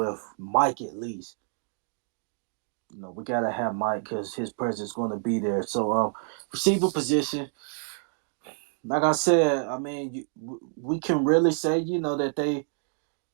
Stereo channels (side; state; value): left; silent; 59 dB below the other